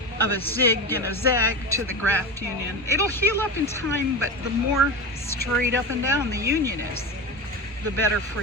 of a zig and a zag to the graft union. It'll heal up in time, but the more straight up and down the union is, the better for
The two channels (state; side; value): normal; both; correlation 0.22